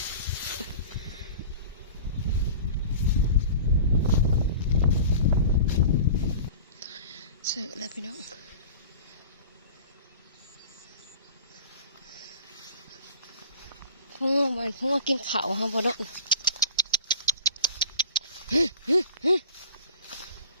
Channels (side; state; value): both; inverted; correlation -0.39